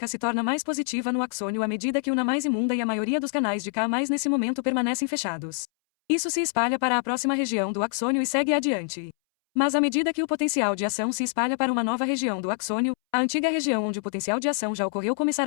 se torna mais positiva no axônio à medida que o Na+ imunda e a maioria dos canais de K+ nesse momento permanecem fechados. Isso se espalha para a próxima região do axônio e segue adiante. Mas à medida que o potencial de ação se espalha para uma nova região do axônio, a antiga região onde o potencial de ação já ocorreu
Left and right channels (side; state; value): right; silent; 61 dB below the other